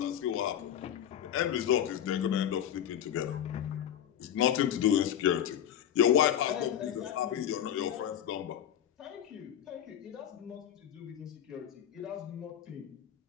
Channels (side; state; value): right; quieter; 10.2 dB